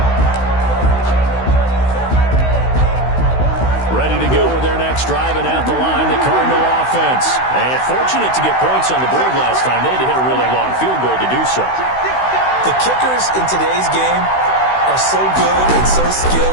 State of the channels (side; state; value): right; late; 16 ms